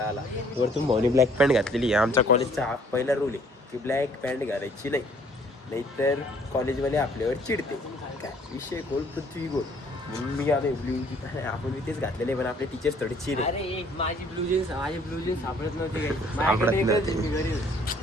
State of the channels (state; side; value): normal; both; correlation 0.59